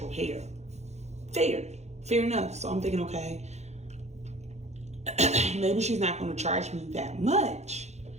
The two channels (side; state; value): left; late; 0.32 ms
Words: hair. Fair enough. So I'm thinking, okay, maybe she's not going to charge me that much